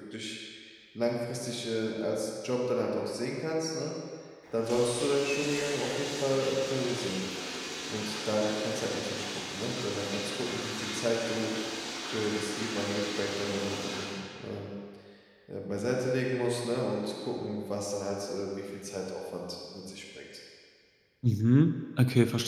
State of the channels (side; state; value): both; identical; correlation 1.00